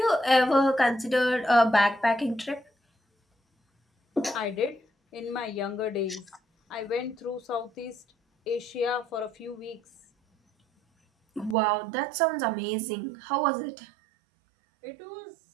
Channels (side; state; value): left; drops out; at 11.6 s